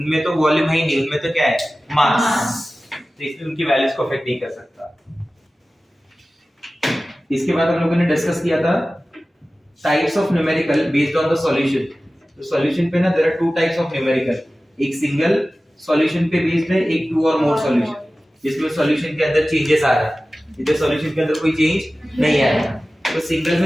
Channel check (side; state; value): both; normal; correlation 0.96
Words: तो volume है ही नहीं, उनमें तो क्या है, मास, तो इसलिए उनकी वैल्यूज को अफेक्ट नहीं कर सकता. इसके बाद हम लोगों ने डिस्कस किया था types of numerical based on the solution. तो सॉल्यूशन पे ना there are two types of numerical, एक सिंगल सॉल्यूशन पे बेस्ड है, एक टू और मोर सॉल्यूशन जिसमें सॉल्यूशन के अंदर चेंजेस आ रहे हैं. इधर सॉल्यूशन के अंदर कोई चेंज नहीं आ रहा. तो सिंगल